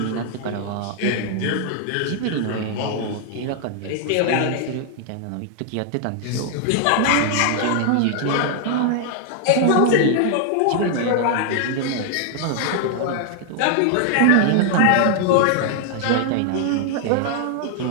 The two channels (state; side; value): different; both; correlation 0.00